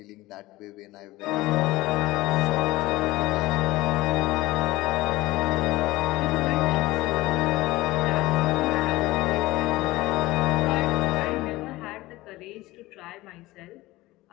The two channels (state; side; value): quieter; right; 18.9 dB